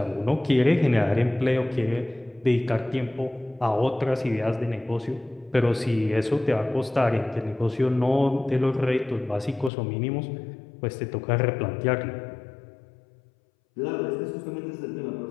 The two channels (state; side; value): drops out; right; at 9.7 s